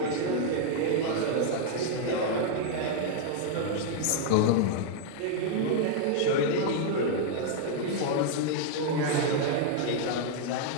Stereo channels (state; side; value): different; both; correlation -0.01